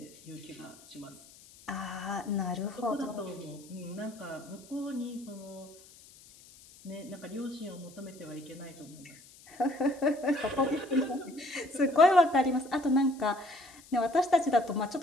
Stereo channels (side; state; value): left; noise; hiss, 22 dB below the sound